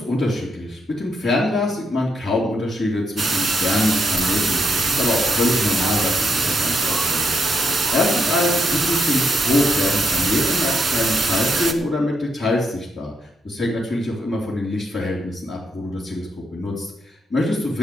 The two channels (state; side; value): normal; both; correlation 0.79